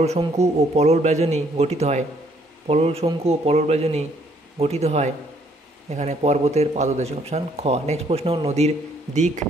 শঙ্কু ও পলল ব্যজনী গঠিত হয় এখানে পর্বতের পাদদেশে, অপশান খ। নেক্সট প্রশ্ন, নদীর নিক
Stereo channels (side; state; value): both; normal; correlation 0.66